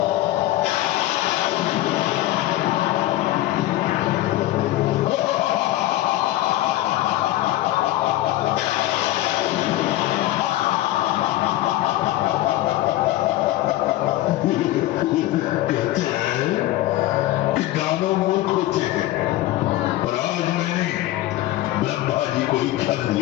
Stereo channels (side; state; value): right; quieter; 15.6 dB